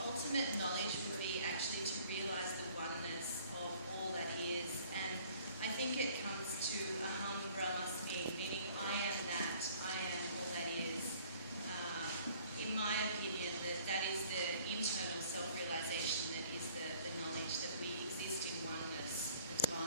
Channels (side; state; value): both; inverted; correlation -0.55